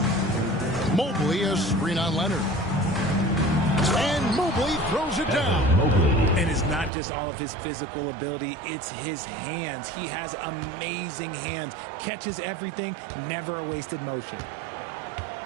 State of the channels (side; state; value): left; drops out; at 6.9 s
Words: Mobley a screen on Leonard. And Mobley throws it down. And it's not just all of his physical ability, it's his hands. He has amazing hands. Catches everything, never a wasted motion.